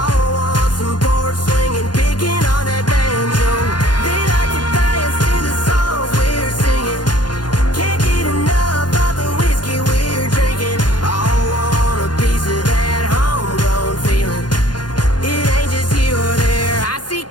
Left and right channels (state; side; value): late; right; 0.70 ms